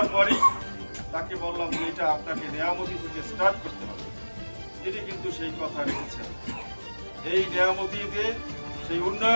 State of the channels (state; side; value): inverted; both; correlation -1.00